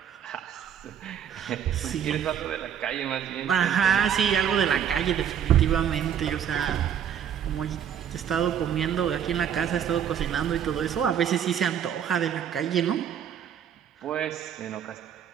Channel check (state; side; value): quieter; left; 9.0 dB